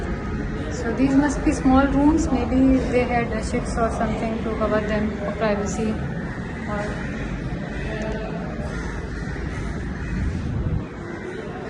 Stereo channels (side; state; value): both; identical; correlation 1.00